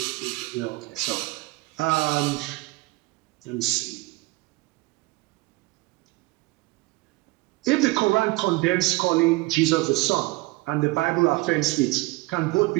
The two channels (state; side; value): quieter; left; 21.4 dB